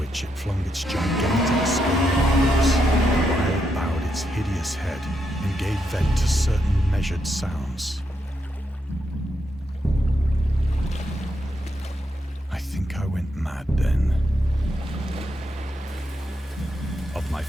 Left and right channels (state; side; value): normal; both; correlation 0.81